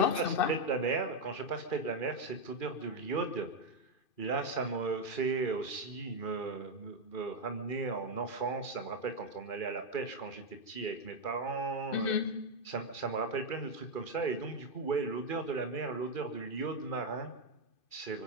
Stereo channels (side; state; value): right; late; 2.4 ms